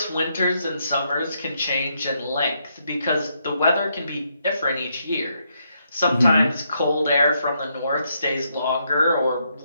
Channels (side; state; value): both; inverted; correlation -0.77